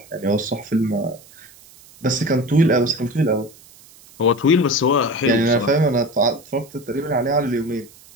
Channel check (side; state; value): right; noise; hiss, 24 dB below the sound